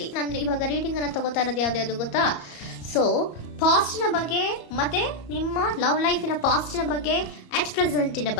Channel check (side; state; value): right; late; 34 ms